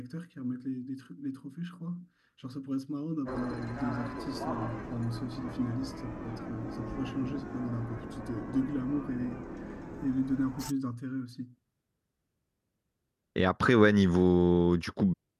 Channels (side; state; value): both; identical; correlation 1.00